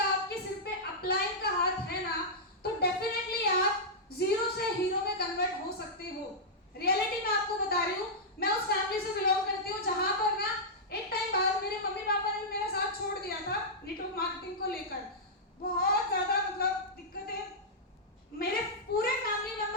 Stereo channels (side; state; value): both; normal; correlation -0.10